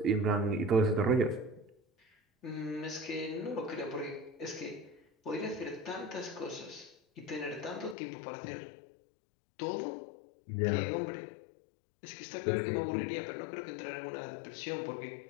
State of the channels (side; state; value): right; drops out; at 8.0 s